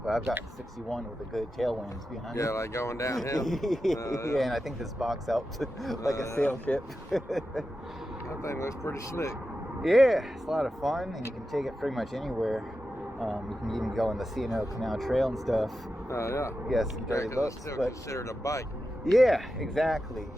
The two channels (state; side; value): normal; both; correlation 0.91